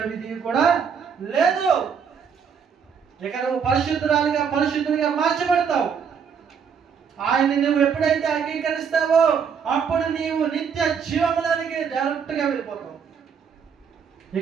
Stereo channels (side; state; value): left; quieter; 6.8 dB